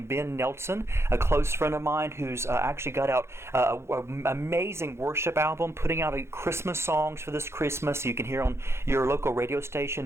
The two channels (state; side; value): late; left; 0.13 ms